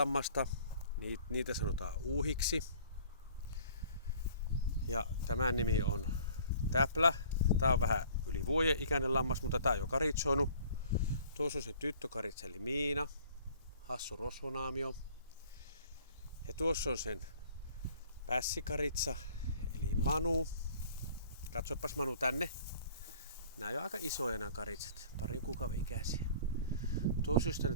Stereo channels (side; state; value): both; inverted; correlation -0.52